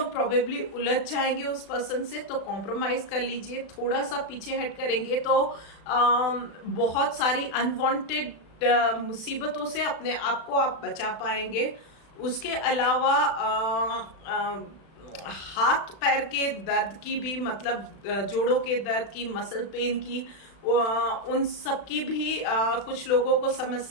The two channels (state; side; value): late; right; 36 ms